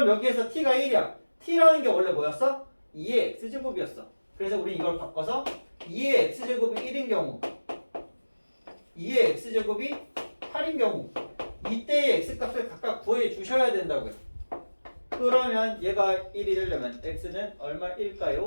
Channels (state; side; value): inverted; both; correlation -1.00